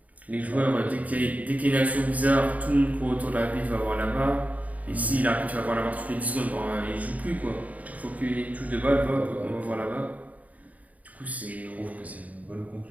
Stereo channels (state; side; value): late; left; 0.072 ms